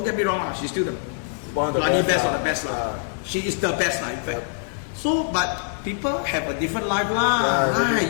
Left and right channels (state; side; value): silent; right; 63 dB below the other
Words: get me wrong, she's still the bloody best of the best. She is the best, in fact. So, but people have a different life